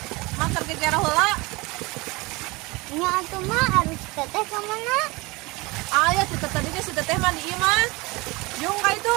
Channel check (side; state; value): left; quieter; 24.2 dB